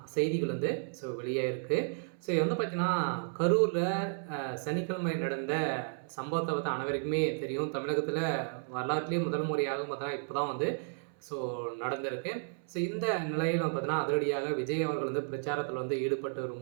செய்திகள் வெளியாயிருக்கு. பார்த்தீங்கன்னா கரூரில் சனிக்கிழமை நடந்த சம்பவத்தை அனைவருக்குமே தெரியும். தமிழகத்தில் வரலாற்றிலேயே முதல் முறையாக பார்த்தீங்கன்னா இப்போ தான் நடந்திருக்கு. இந்த நிலையில் பார்த்தீங்கன்னா அதிரடியாக விஜய் அவர்கள் பிரச்சாரத்தில் ஈடுபட்டு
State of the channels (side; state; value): left; silent; 56 dB below the other